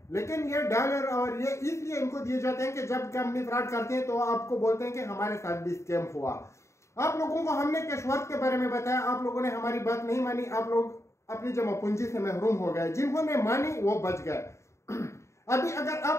लेकिन ये डॉलर और ये इसलिए इनको दिए जाते हैं कि जब कंपनी फ्रॉड करते हैं तो आपको बोलते हैं कि हमारे साथ भी स्कैम हुआ। आप लोगों को हमने कैशवर्थ के बारे में बताया, आप लोगों ने हमारी बात नहीं मानी, आप लोग अपनी जमा पूंजी से महरूम हो गए। जिन्होंने मानी वो बच गए। अभी अगर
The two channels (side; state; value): right; late; 0.14 ms